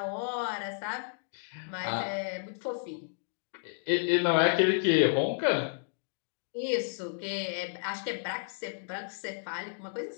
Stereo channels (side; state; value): right; silent; digital silence